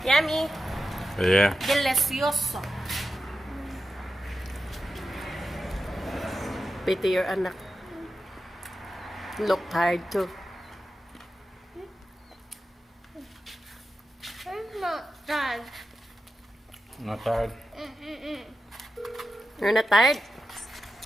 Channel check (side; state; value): both; normal; correlation 0.91